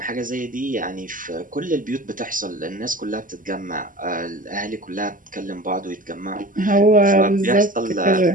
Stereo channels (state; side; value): late; left; 0.39 ms